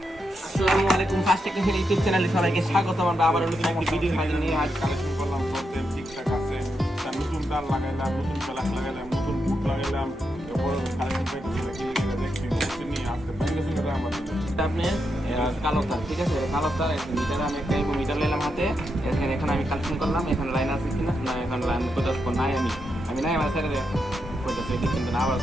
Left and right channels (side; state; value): both; normal; correlation 0.84